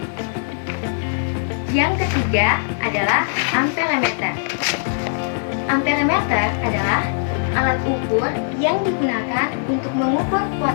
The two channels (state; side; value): silent; right; digital silence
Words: Yang ketiga adalah amperemeter. Amperemeter adalah alat ukur yang digunakan untuk mengukur